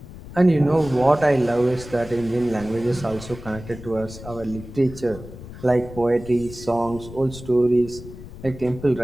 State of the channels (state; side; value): noise; left; rumble, 15 dB below the sound